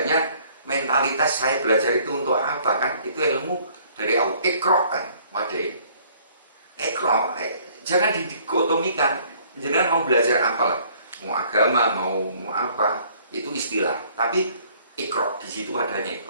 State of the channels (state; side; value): inverted; both; correlation -0.59